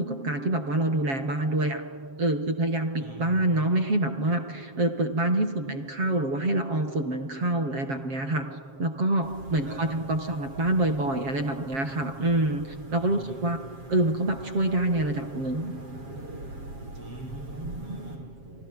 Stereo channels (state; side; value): late; left; 7.4 ms